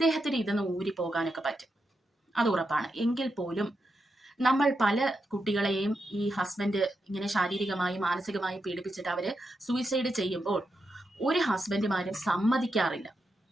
ഇതൊന്ന് ഊരിപ്പോകാനൊക്കെ പറ്റും, അത് ഉറപ്പാണ്. എങ്കിൽ പോലും നമ്മൾ പല കുട്ടികളെയും ഈ ഹസ്ബൻഡ് ഇങ്ങനെ ശാരീരികമായി മാനസികമായി പീഡിപ്പിച്ചിട്ട് അവര് സൂയിസൈഡ് ചെയ്യുമ്പോൾ ഒരു ഹസ്ബൻഡുമാരും സമ്മതിക്കാറില്ല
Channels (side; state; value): both; normal; correlation 0.86